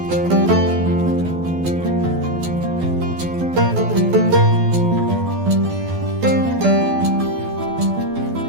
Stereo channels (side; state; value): left; late; 12 ms